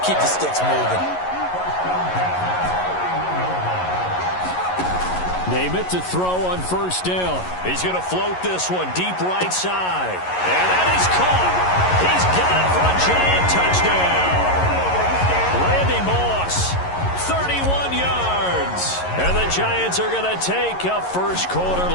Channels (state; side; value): late; right; 11 ms